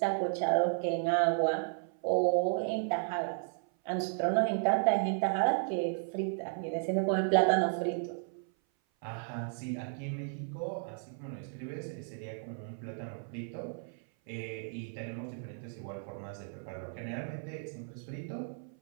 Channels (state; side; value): silent; left; 55 dB below the other